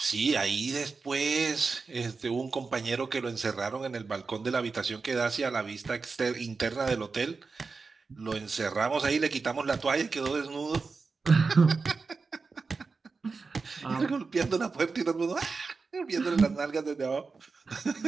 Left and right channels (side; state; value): left; quieter; 4.5 dB